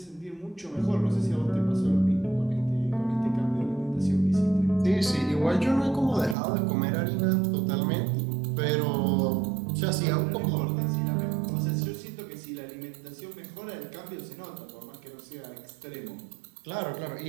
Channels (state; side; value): drops out; left; at 6.4 s